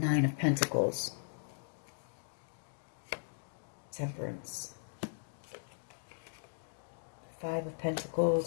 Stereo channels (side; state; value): right; silent; digital silence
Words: of Pentacles. Temperance. Five of